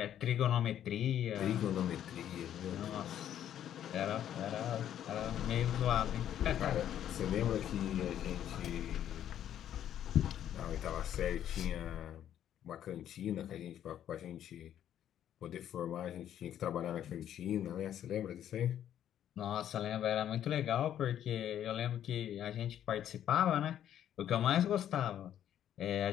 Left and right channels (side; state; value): right; quieter; 10.6 dB